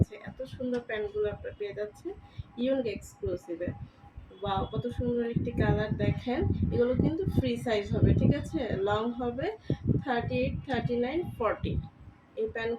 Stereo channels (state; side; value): identical; both; correlation 1.00